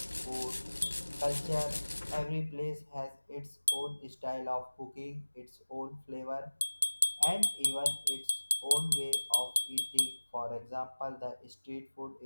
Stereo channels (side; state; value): both; inverted; correlation -1.00